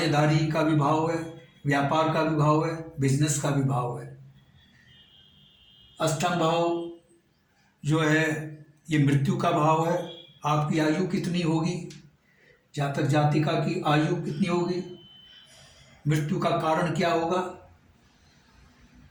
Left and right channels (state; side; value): identical; both; correlation 1.00